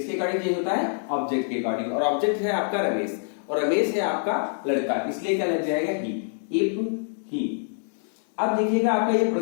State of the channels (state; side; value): silent; right; digital silence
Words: अकॉर्डिंग चेंज होता है? ऑब्जेक्ट के अकॉर्डिंग। और ऑब्जेक्ट है आपका रमेश, और रमेश है आपका लड़का, इसलिए क्या लग जाएगा? ही। If he. अब देखिएगा आपका ये